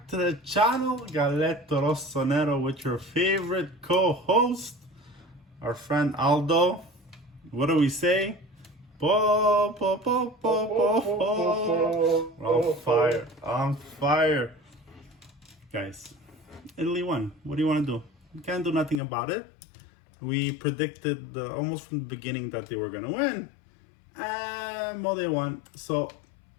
to the channel. Galletto Rossonero with your favorite co-host, our friend Aldo. What do we say? Po, po, po, po, po, po. On fire, on fire. Guys, Italy won. What do you want to do? You can't do nothing about it. We predicted almost from the beginning that they were going to win. Well, they won. So,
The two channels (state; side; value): drops out; right; at 19.0 s